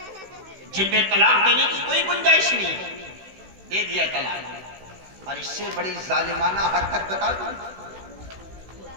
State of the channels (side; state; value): left; late; 16 ms